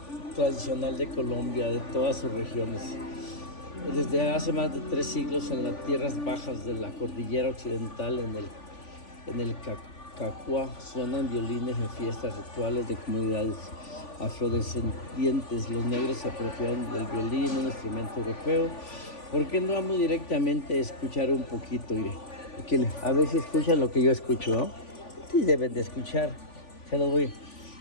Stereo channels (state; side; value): late; right; 3.5 ms